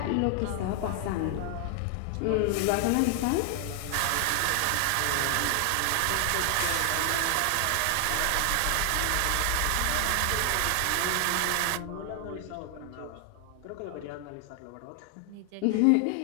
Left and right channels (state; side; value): different; both; correlation 0.00